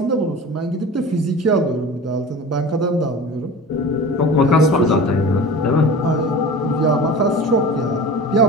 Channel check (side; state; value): both; normal; correlation 0.36